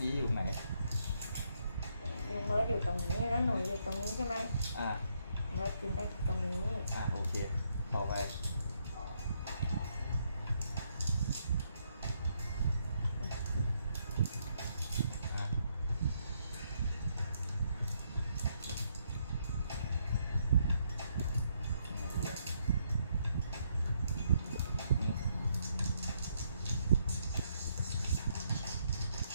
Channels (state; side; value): inverted; both; correlation -0.75